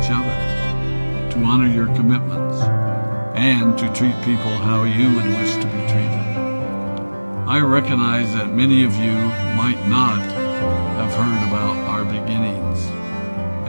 other, to honor your commitments, and to treat people how you would wish to be treated. I recognize that many of you might not have heard about our beginnings,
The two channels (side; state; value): both; inverted; correlation -1.00